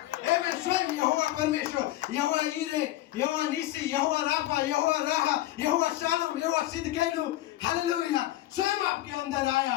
आमेन। स्वयं यहोवा परमेश्वर, यहोवा यीरे, यहोवा निसी, यहोवा राफा, यहोवा राहा, यहोवा शालोम, यहोवा सिदकेनु, हालेलुया, स्वयं आपके अंदर आया।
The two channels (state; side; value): quieter; right; 15.2 dB